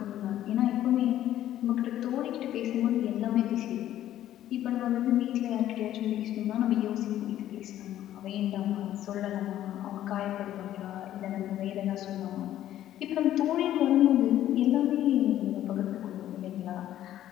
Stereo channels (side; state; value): right; quieter; 12.4 dB